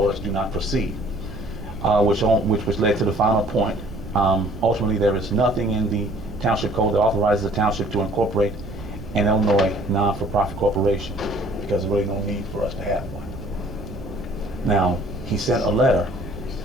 us do not proceed, which led to the final point. Ultimately, there is nothing in the township code that authorizes the township to incorporate an Illinois non-for-profit corporation, because there's really no need for us to have one. Now, he sent a letter,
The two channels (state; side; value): noise; right; rumble, 13 dB below the sound